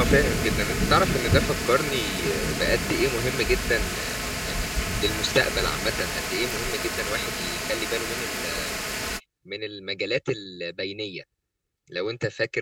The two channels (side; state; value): both; identical; correlation 1.00